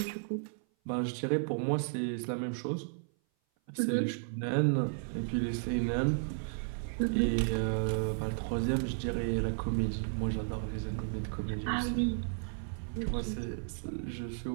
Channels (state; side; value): silent; left; 55 dB below the other